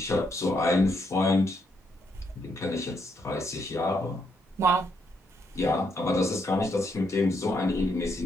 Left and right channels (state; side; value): normal; both; correlation 0.76